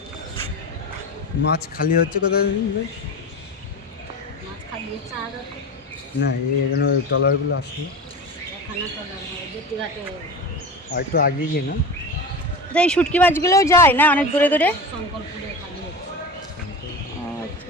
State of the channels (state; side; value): normal; both; correlation 0.28